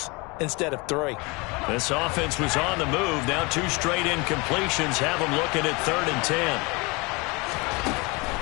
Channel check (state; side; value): quieter; right; 27.0 dB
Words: instead of 3. This offense was on the move. Now 2 straight incompletions have them looking at 3rd and 10.